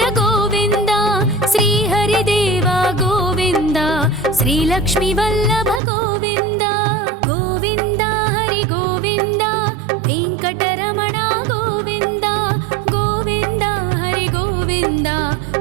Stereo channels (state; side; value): drops out; left; at 5.8 s